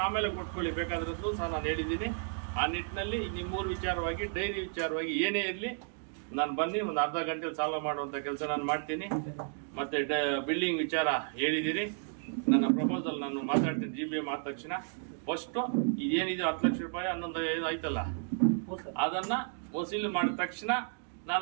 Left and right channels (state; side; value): silent; left; 56 dB below the other